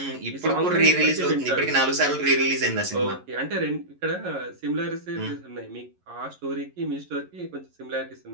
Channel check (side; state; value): left; late; 11 ms